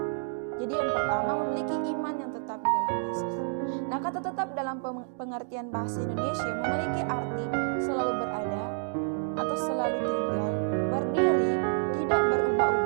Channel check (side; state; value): left; silent; digital silence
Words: Jadi yang pertama, memiliki iman yang tetap di dalam Yesus. Nah, kata tetap dalam pengertian bahasa Indonesia memiliki arti selalu berada atau selalu tinggal, berdiri, tidak